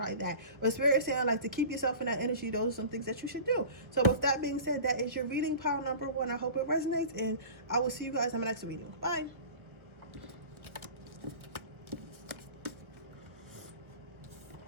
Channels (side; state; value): left; late; 1.6 ms